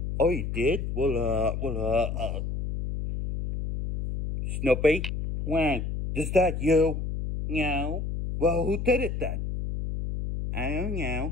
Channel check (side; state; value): left; noise; hum, 3 dB below the sound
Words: Oh, you did? Snoopy? Well, is that you? No. Well, who did it then? I don't